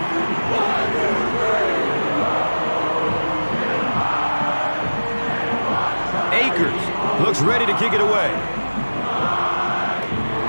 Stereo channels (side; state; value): both; inverted; correlation -1.00